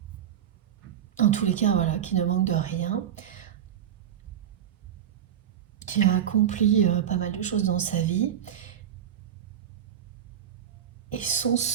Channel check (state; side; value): quieter; left; 9.7 dB